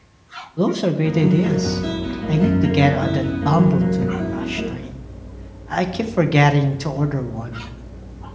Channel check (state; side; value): identical; both; correlation 1.00